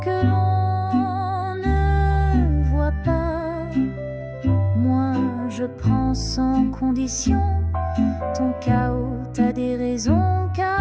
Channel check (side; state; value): both; identical; correlation 1.00